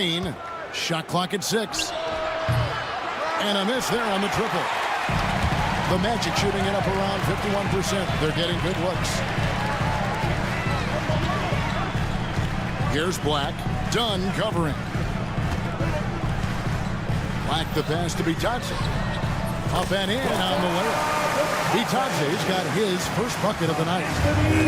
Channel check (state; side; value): identical; both; correlation 1.00